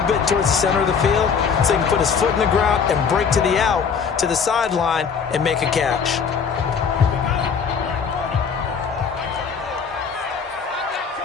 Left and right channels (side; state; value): right; quieter; 6.2 dB